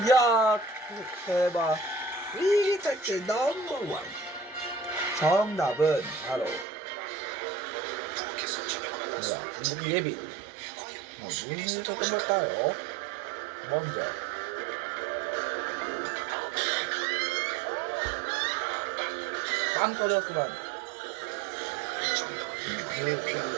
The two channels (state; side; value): drops out; left; at 6.7 s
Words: 이야, 대박. 위기탈출 넘버원. 정답은 바로 뭐야, 중국 예비. 무슨 있었던 걸까요? 먼저 빵 터졌구만.